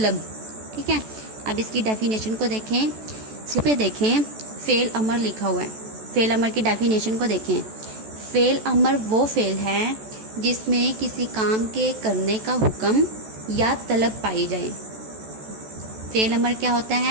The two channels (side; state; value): left; late; 14 ms